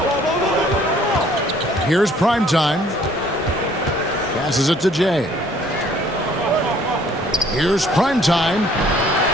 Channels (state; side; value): normal; both; correlation 0.58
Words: Here's Primetime. Passes it to Jay. Here's Primetime.